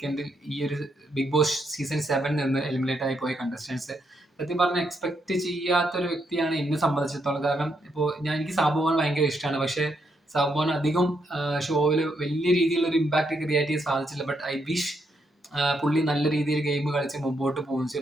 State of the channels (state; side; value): normal; both; correlation 0.78